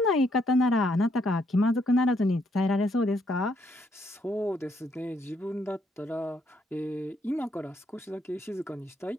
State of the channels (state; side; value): normal; both; correlation 0.73